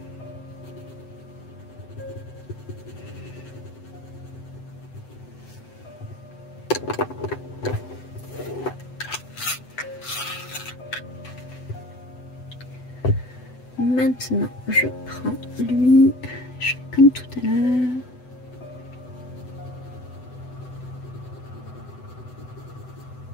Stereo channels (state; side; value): late; right; 7.9 ms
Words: maintenant, je prends lui, je fais comme tout à l'heure.